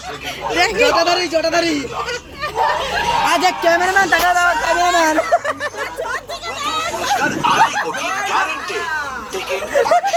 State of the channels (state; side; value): identical; both; correlation 1.00